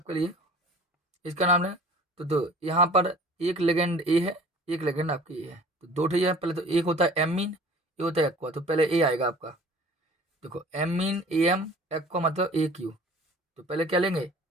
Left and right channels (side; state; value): both; normal; correlation 0.46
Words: लिए, इसका नाम है। तो यहाँ पर एक लेगेंड ए है, एक लेगेंड आपकी ए है, तो 2 ठे है। पहले तो एक होता है एमीन, ये होता है एक्वा, तो पहले ए आएगा आपका। देखो एमीन AM, एक्वा मतलब AQ, तो पहले क्या लेंगे,